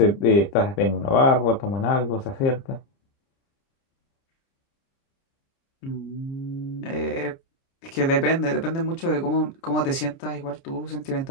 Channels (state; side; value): late; right; 29 ms